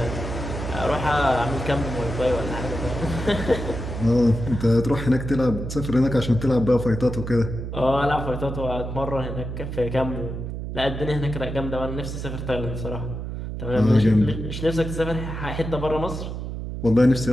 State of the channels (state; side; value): noise; right; hum, 6 dB below the sound